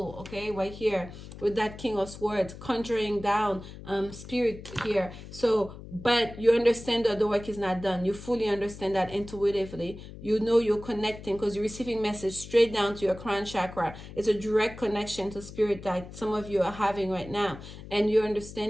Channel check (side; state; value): left; noise; hum, 14 dB below the sound